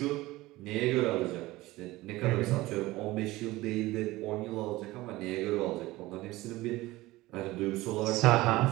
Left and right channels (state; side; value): quieter; left; 18.9 dB